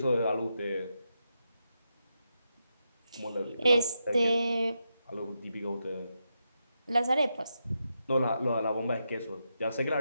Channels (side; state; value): both; inverted; correlation -0.85